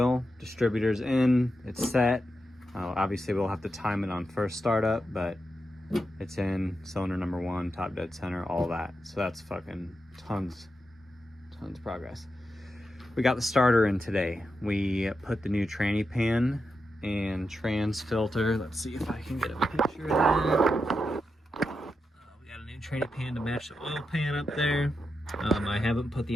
distributor's in, it's set. Obviously we'll have to time it on first startup, but it's in, cylinder number 1, top dead center, all that. So that's fucking tons of progress. We got the starter in today. We put the new tranny pan and trans filter. Let's see if I can get a picture of that. We got a new tranny pan to match the oil pan up there. I haven't put the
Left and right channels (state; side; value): normal; both; correlation 0.87